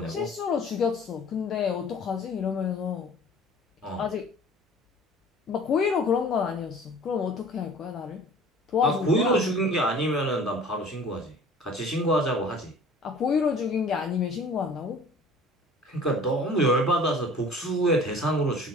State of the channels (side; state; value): both; normal; correlation 0.47